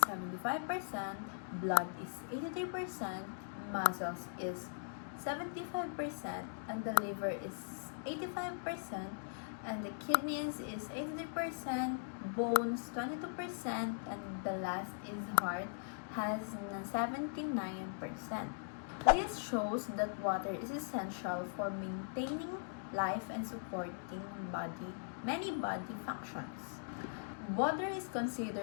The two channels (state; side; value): silent; right; digital silence